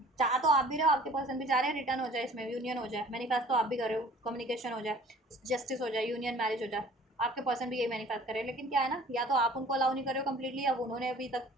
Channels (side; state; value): both; normal; correlation 0.50